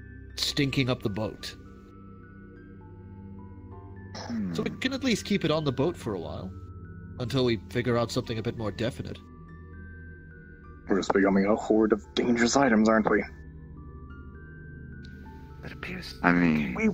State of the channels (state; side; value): identical; both; correlation 1.00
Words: stinking up the boat. So we can at least keep it on the boat for a while, until we figure out something a bit more definite. We're just becoming a horde of dangerous items, aren't we? It appears. I mean, we